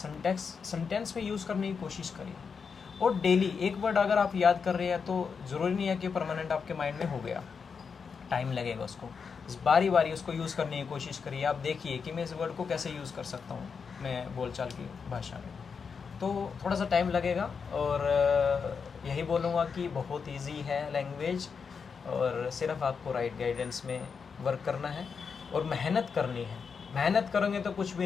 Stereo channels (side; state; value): right; quieter; 5.8 dB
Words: में यूज़ करने की कोशिश करिए। और डेली एक वर्ड अगर आप याद कर रहे हैं तो ज़रूरी नहीं है कि परमानेंट आपके माइंड में हो गया, टाइम लगेगा उसको। बारी बारी उसको यूज़ करने की कोशिश करिए। आप देखिए कि मैं इस वर्ड को कैसे यूज़ कर सकता हूँ मैं बोलचाल की भाषा में, तो थोड़ा सा टाइम लगेगा। और यही बोलूँगा कि बहुत इजी है लैंग्वेज, और सिर्फ आपको राइट गाइडेंस में वर्क करना है और मेहनत करनी है। मेहनत करोगे तो कुछ